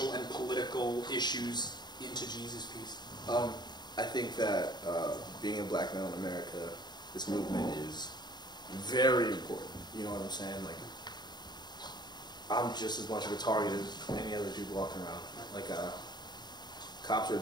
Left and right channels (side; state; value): right; late; 0.21 ms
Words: and political issues into Jesus Piece? I think that being a black male in America, this movement is very important. You know what I'm saying? Like, I'm just as much of a target as any other dude walking around. Like, cops are